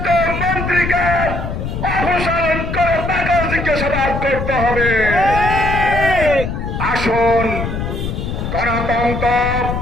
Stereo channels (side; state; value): left; noise; rumble, 4 dB below the sound